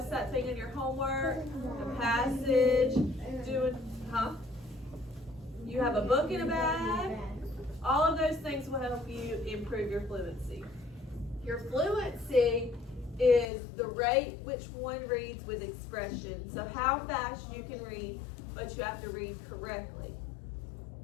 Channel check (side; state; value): right; drops out; at 13.5 s